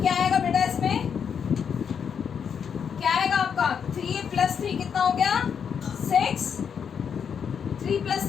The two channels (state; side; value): quieter; right; 7.2 dB